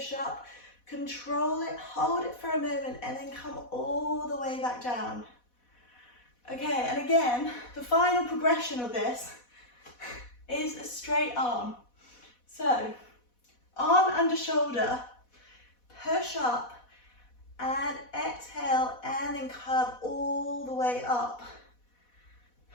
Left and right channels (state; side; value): late; right; 4.1 ms